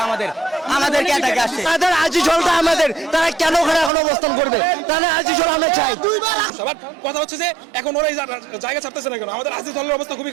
আমাদেরকে এটাকে আসছে। তাদের আজিজলটা আমাদের, তারা কেন ওখানে এখন অবস্থান করবে? তাহলে আজিজল আমরা চাই। সবার কথা হচ্ছে যে এখন ওরা এই জায়গা ছাড়তেছে না কেন, আমাদের আজিজলের অবস্থা খুবই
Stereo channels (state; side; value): drops out; left; at 3.9 s